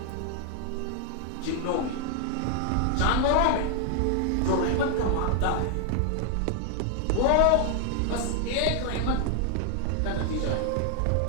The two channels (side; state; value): both; different; correlation 0.00